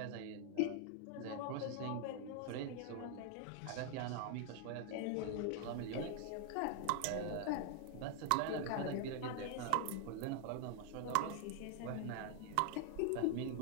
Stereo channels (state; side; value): different; both; correlation 0.00